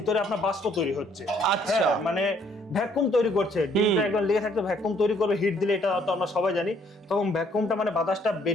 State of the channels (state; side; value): normal; both; correlation 0.65